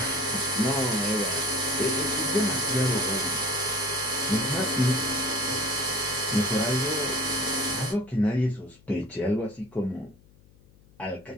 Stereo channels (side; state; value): left; noise; hum, 28 dB below the sound